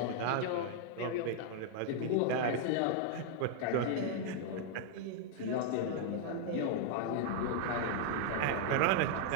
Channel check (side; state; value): both; different; correlation 0.00